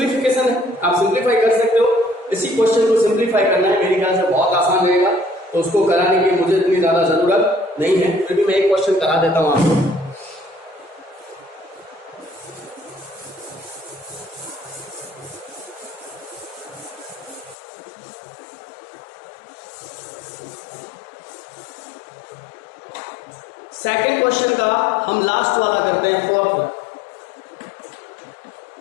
है, आप सिंपलीफाई कर सकते हो। इसी क्वेश्चन को सिंपलीफाई करना है, मेरे ख्याल से बहुत आसान रहेगा, तो उसको कराने की मुझे इतनी ज्यादा जरूरत नहीं है, फिर भी मैं एक क्वेश्चन करा देता हूं आपको। सेकंड क्वेश्चन का हम लास्ट वाला करते हैं, फोर्थ वाला।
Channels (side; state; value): right; drops out; at 17.6 s